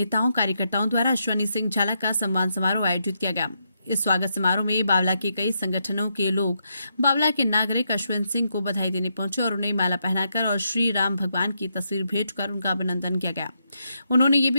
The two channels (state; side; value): inverted; both; correlation -0.80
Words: कार्यकर्ताओं द्वारा अश्विन सिंह झाला का सम्मान समारोह आयोजित किया गया। इस स्वागत समारोह में बावला के कई संगठनों के लोग बावला के नागरिक अश्विन सिंह को बधाई देने पहुंचे और उन्हें माला पहनाकर और श्री राम भगवान की तस्वीर भेंट कर उनका अभिनंदन किया गया। उन्होंने ये